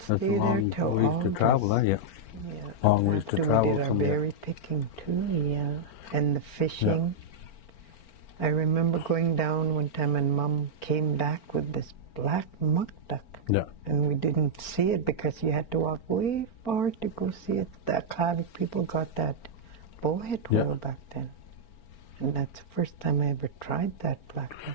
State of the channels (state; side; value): late; right; 4.4 ms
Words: stay there till August. To travel, Yeah, after we did our berry picking too, and the fishing. I remember going down one time and Mom came back with this black muck duck. And we didn't see it because you had to walk way far to go see it. The Clara people got that bowhead whale back then. And that's the first time I ever tried that black duck.